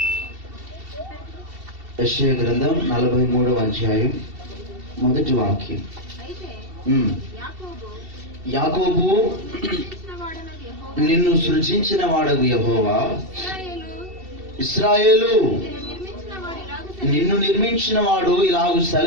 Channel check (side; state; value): left; late; 2.7 ms